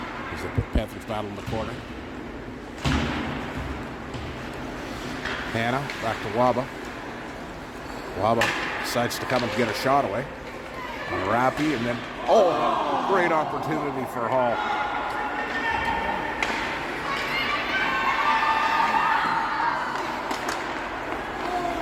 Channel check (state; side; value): identical; both; correlation 1.00